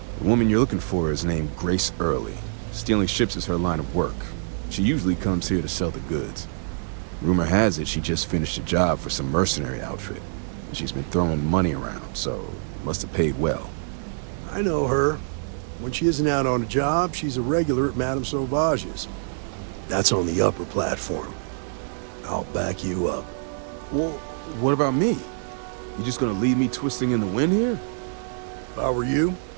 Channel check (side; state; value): left; silent; digital silence